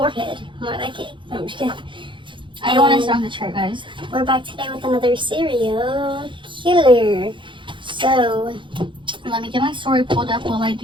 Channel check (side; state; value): left; late; 0.24 ms